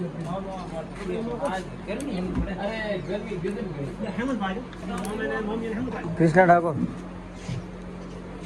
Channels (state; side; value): identical; both; correlation 1.00